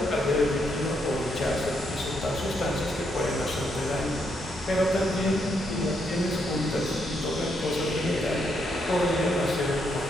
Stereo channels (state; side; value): normal; both; correlation 0.77